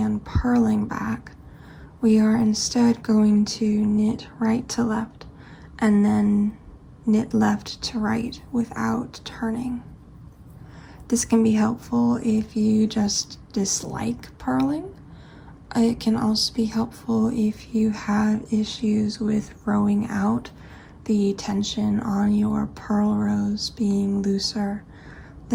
purling back, we are instead going to knit right to left and then knit left to right without turning. This can be helpful if you just dislike purling. It can also be helpful if you have issues with rowing out, the tension on your purl rows being looser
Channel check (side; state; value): both; identical; correlation 1.00